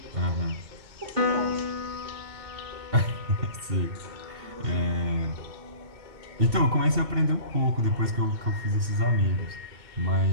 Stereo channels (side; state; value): left; late; 2.7 ms